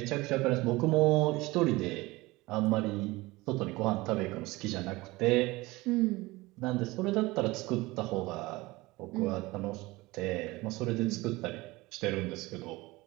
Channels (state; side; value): quieter; left; 21.1 dB